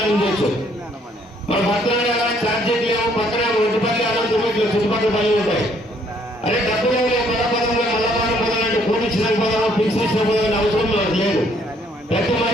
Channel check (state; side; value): normal; both; correlation 0.65